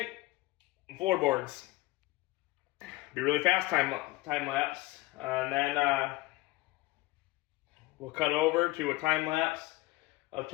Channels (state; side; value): quieter; right; 19.7 dB